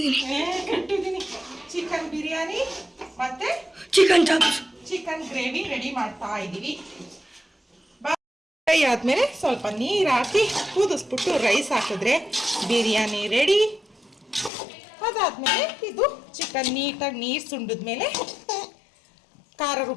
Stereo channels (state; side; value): drops out; right; at 14.5 s